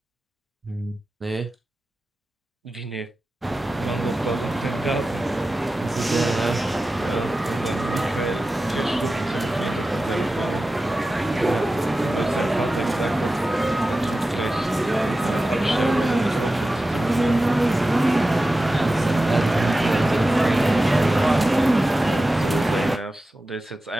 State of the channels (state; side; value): normal; both; correlation 0.94